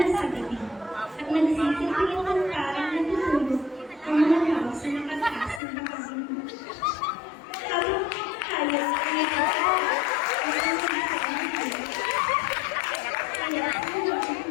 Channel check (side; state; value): right; drops out; at 5.6 s